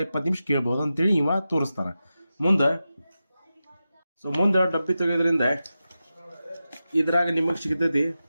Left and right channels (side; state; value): both; inverted; correlation -0.92